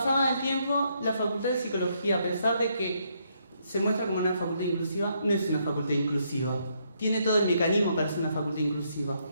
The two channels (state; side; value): inverted; both; correlation -0.74